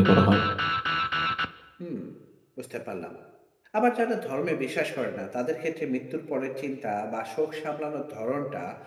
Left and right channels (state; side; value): identical; both; correlation 1.00